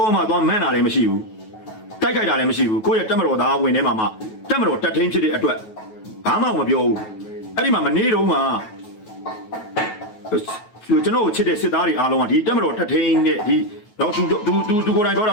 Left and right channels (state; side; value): late; right; 9.3 ms